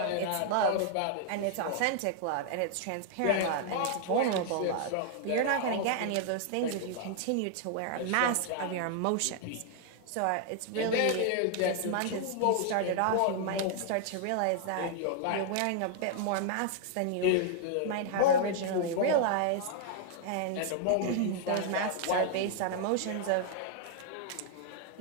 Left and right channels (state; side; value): different; both; correlation 0.00